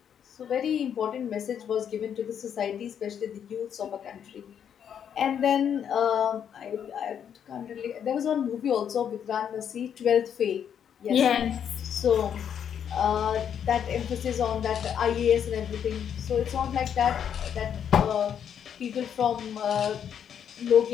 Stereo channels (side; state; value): right; quieter; 8.5 dB